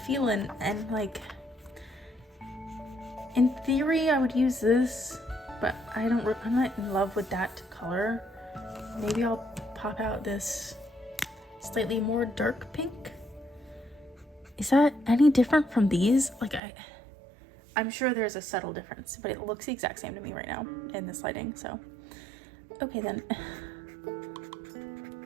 and like, in theory I would use this, but I'm not in love with that color. Maybe I'll pop out this slightly more dark pink. Is that any different from these? Like, I'm sure there's a subtle difference, but it looks the exact same to me right now in this lighting, so. Okay then.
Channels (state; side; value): drops out; left; at 16.6 s